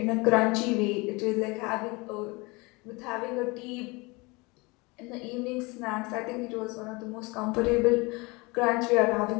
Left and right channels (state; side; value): quieter; right; 25.7 dB